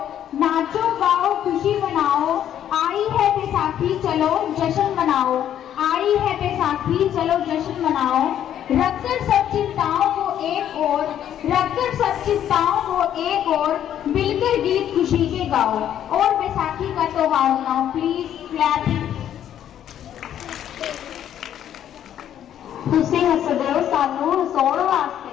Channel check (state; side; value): quieter; right; 10.5 dB